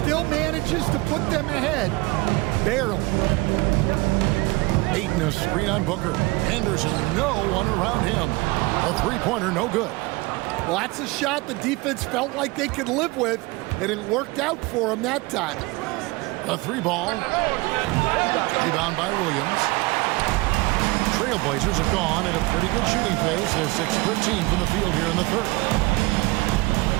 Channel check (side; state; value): left; quieter; 23.4 dB